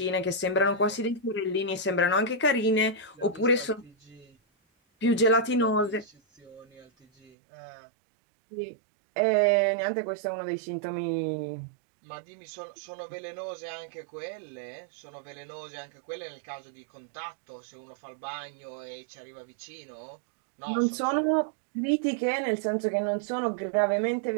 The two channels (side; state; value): left; drops out; at 7.3 s